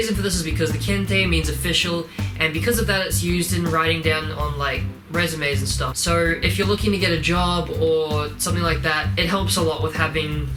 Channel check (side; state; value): both; identical; correlation 1.00